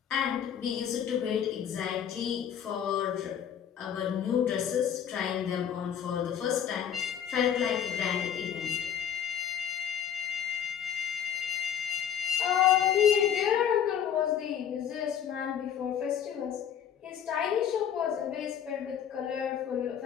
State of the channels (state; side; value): quieter; right; 9.0 dB